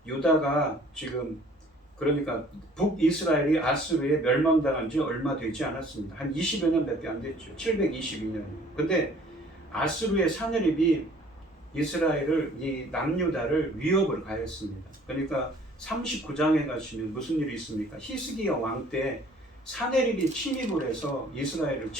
유다가 지금, 그러니까 북이스라엘이 아수르에 멸망당한 지 얼마 되지 않았습니다. 한 20여 년밖에 안 됐죠. 722년이에요. 근데 아수르의 사내립이 이스라엘을, 이 남유다를 위협을 가했습니다. 그러니까 39장에 가시면 무슨 일이 있습니까? 히스기야 왕 때 사내립이 침입을 해서 이스라엘을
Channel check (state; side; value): normal; both; correlation 0.54